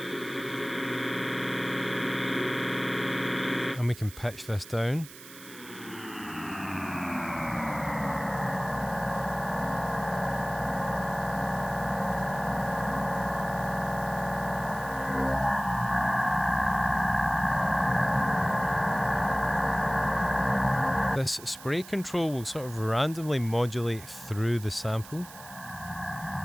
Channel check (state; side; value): noise; right; hiss, 17 dB below the sound